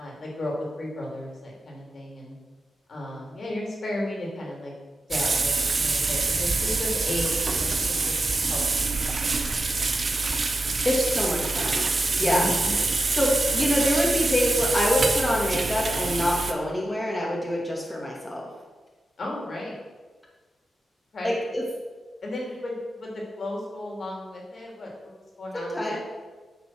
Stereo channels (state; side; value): normal; both; correlation 0.91